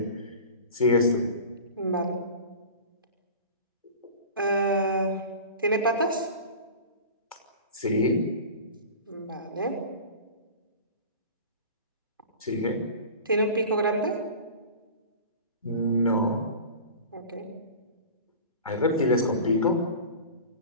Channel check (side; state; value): both; inverted; correlation -0.36